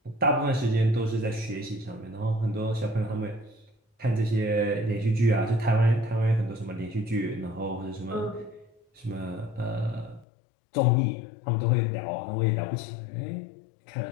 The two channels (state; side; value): drops out; right; at 10.2 s